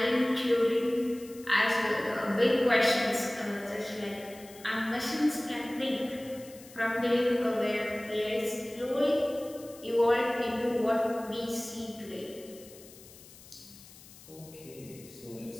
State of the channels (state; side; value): noise; left; hiss, 20 dB below the sound